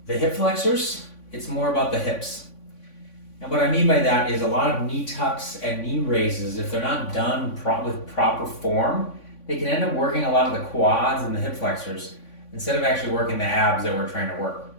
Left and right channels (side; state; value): right; late; 3.5 ms